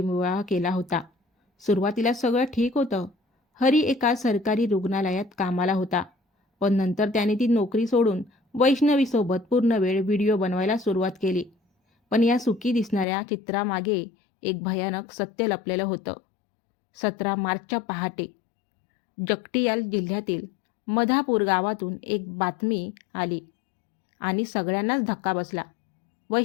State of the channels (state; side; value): drops out; right; at 13.1 s